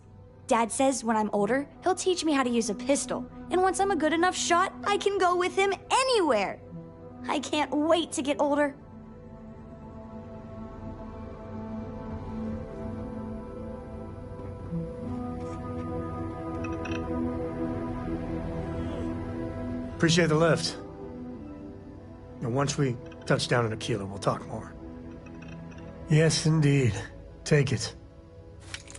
Dad says when I'm older, he'll teach me how to use a pistol, and once I'm a good enough shot, I can go with him anywhere. I can't wait to get older. Appreciate the lift. Now, once we touch down in Aquila, we'll talk more. Yes, indeed. Take it.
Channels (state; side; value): identical; both; correlation 1.00